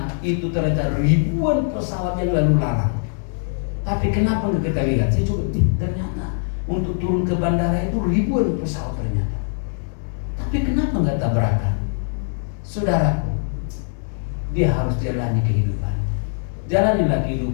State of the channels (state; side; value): silent; right; digital silence